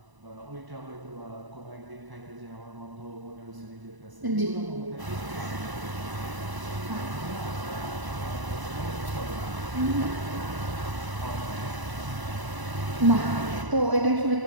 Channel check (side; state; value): left; late; 1.0 ms